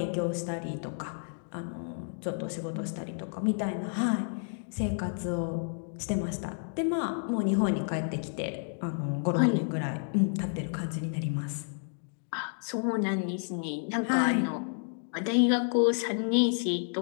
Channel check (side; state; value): right; silent; 57 dB below the other